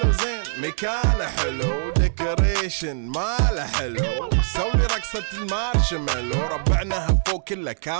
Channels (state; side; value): silent; left; digital silence